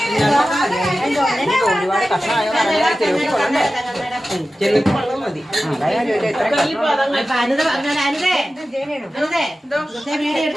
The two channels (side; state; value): both; normal; correlation 0.94